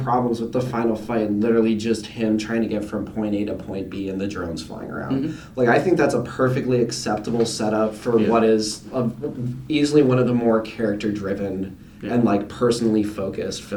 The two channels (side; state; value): both; identical; correlation 1.00